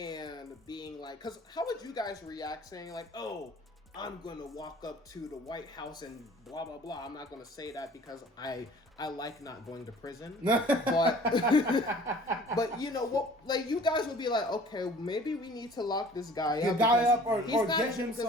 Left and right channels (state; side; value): normal; both; correlation 0.49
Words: being like, because how would you guys react saying like, oh, I'm gonna walk up to the White House and blah blah blah. I'm not gonna say that because I like not going to prison, but you know what? Like you guys would be like, okay, maybe we need to lock this guy up. Or get him some